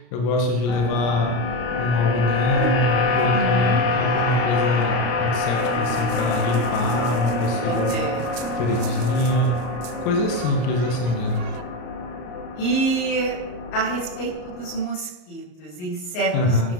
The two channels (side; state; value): right; late; 33 ms